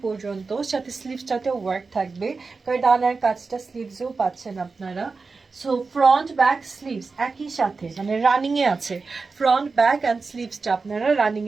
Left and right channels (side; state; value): left; quieter; 4.3 dB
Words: পর্যন্ত, সাথে স্লিভসটাতেও ওয়ার্ক থাকবে। কারদানার কাজটা স্লিভসেও পাচ্ছেন আপনারা। সো ফ্রন্ট ব্যাক স্লিভস একই সাথে, মানে রানিংয়ে আছে। ফ্রন্ট ব্যাক অ্যান্ড স্লিভসটা আপনারা